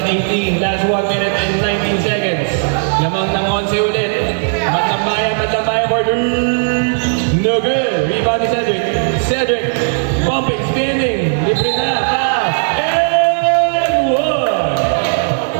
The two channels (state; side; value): silent; left; digital silence